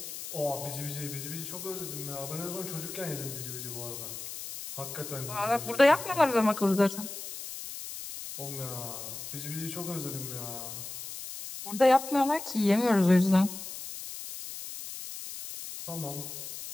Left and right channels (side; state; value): left; noise; hiss, 9 dB below the sound